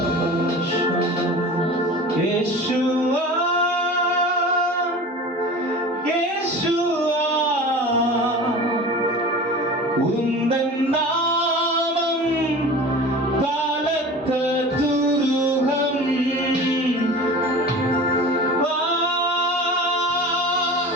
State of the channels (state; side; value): normal; both; correlation 0.37